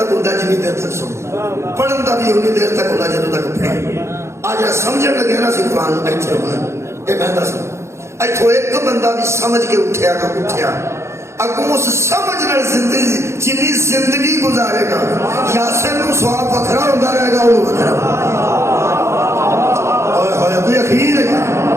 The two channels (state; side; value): late; left; 0.13 ms